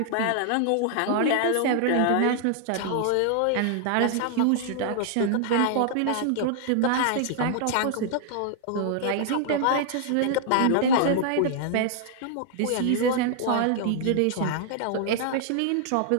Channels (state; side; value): different; both; correlation -0.01